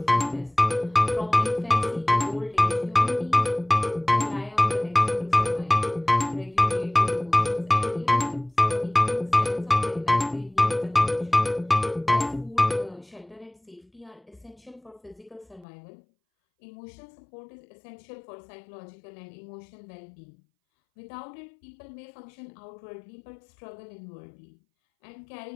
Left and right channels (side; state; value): right; drops out; at 15.7 s